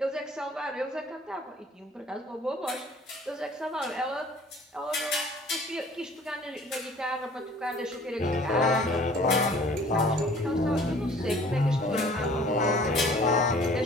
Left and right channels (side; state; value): both; normal; correlation 0.51